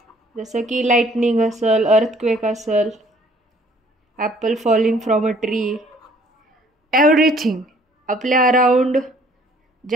जसं की लाईटनिंग असेल, अर्थक्वेक असेल, Apple falling from a tree, everything. आपल्या अराउंड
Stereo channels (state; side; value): normal; both; correlation 0.59